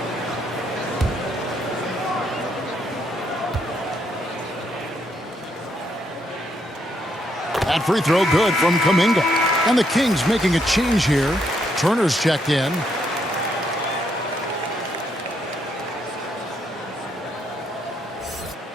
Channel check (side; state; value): both; normal; correlation 0.75